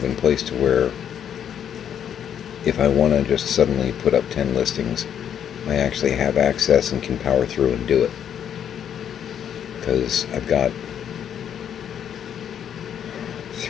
in place to where if I want to just suddenly put up 10 listings, I actually have access and can power through and do it. Because I've got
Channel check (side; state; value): right; quieter; 9.0 dB